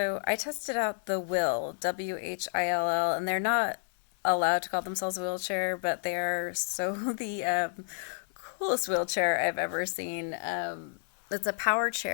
I tested out the Whill, Whill, and they're not allowed to call themselves a wheelchair, but they are so the coolest wheelchair I've ever seen. It's a power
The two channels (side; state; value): right; silent; 58 dB below the other